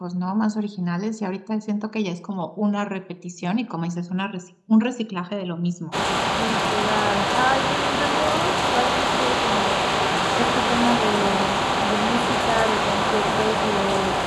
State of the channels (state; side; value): identical; both; correlation 1.00